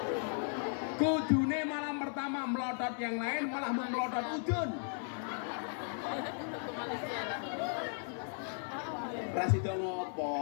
Kudune malam pertama melotot yang lain malah melotot udun. Rasido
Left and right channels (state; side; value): silent; right; 54 dB below the other